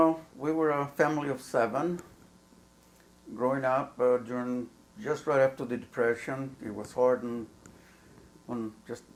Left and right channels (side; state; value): both; identical; correlation 1.00